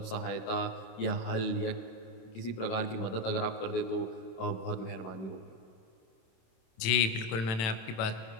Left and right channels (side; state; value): right; late; 27 ms